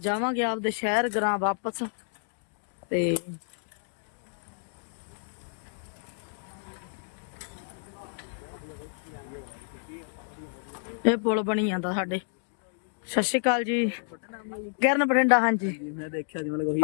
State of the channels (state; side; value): silent; right; digital silence